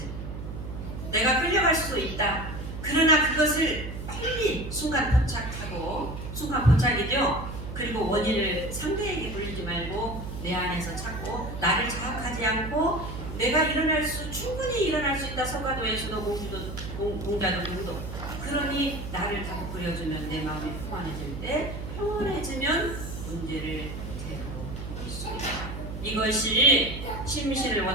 내가 끌려갈 수도 있다. 그러나 그것을 빨리 순간 포착하고 순간 포착이죠. 그리고 원인을 상대에게 돌리지 말고 내 안에서 찾고 나를 자학하지 않고 내가 충분히 일어날 수 있다. 서가도에서도 공자도 누구도 그러니 나를 다 그려주면 내 마음이 평안해질 때 평온해지면 문제를 제대로 볼 수 있다. 이것이 심신을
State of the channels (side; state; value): right; noise; hum, 8 dB below the sound